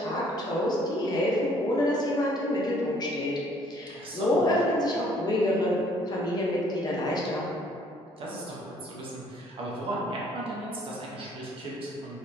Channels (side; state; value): both; normal; correlation 0.61